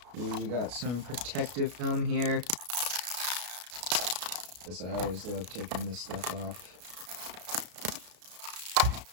Ooh, we got some protective film here. I always love taking this stuff off.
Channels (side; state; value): left; late; 33 ms